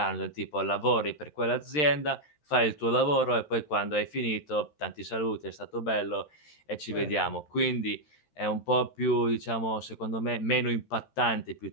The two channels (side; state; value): right; late; 13 ms